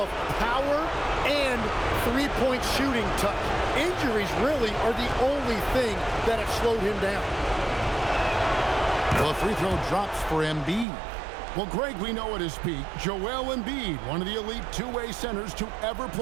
power and three-point shooting touch. Injuries really are the only thing that have slowed him down. Well, the free throw drops for Embiid. Well, Greg, we know at his peak, Joel Embiid, one of the elite two-way centers to ever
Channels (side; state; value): left; drops out; at 10.9 s